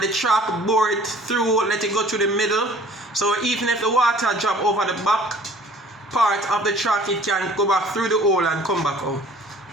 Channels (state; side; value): normal; both; correlation 0.51